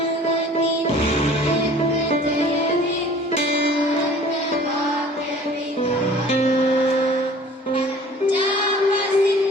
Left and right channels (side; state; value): both; normal; correlation 0.49